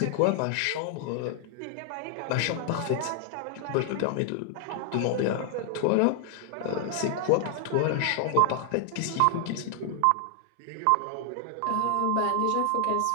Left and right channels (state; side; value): different; both; correlation 0.00